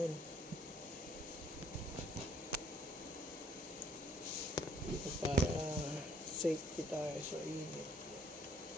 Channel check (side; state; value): both; normal; correlation 0.64